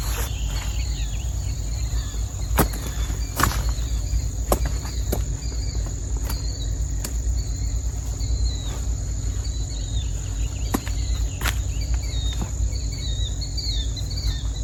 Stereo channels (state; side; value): identical; both; correlation 1.00